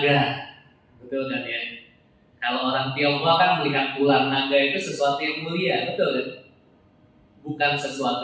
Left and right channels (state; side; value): identical; both; correlation 1.00